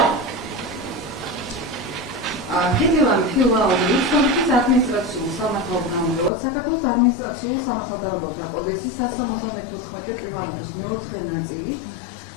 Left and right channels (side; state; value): right; drops out; at 6.3 s